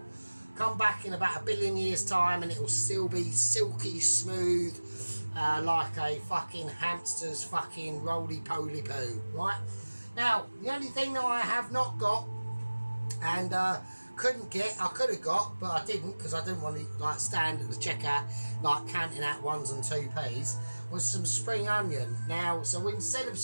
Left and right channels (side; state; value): both; inverted; correlation -1.00